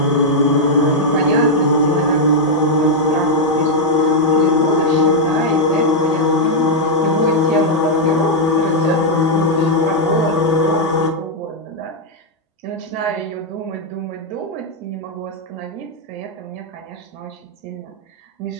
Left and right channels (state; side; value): normal; both; correlation -0.02